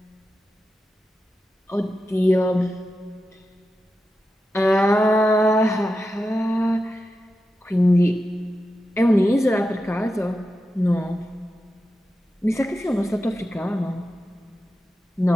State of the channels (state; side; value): normal; both; correlation 0.90